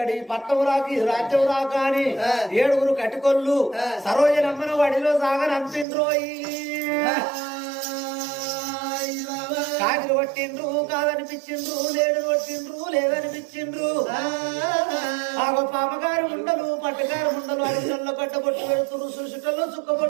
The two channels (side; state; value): left; drops out; at 5.9 s